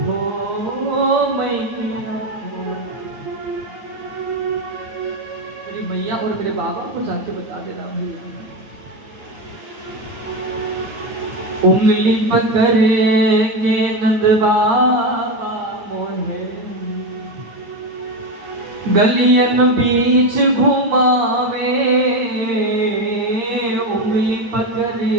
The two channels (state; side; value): late; left; 8.6 ms